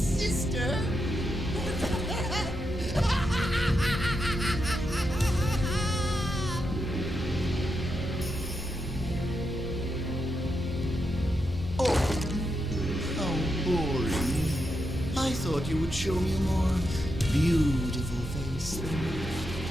Oh, how boring. I thought you would show me a more beautiful face than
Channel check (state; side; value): normal; both; correlation 0.85